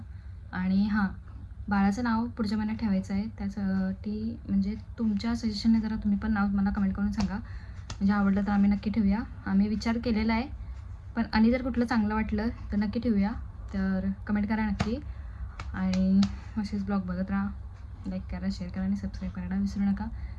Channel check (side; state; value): both; identical; correlation 1.00